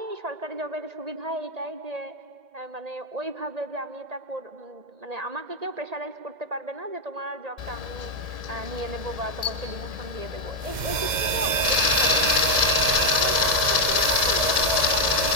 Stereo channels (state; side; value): late; left; 2.1 ms